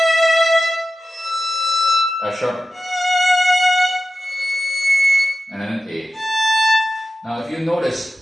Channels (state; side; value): normal; both; correlation 0.92